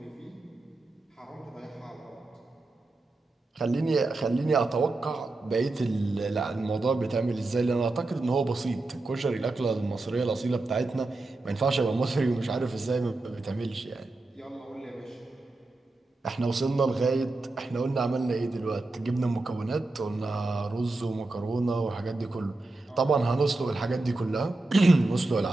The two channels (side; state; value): left; quieter; 3.1 dB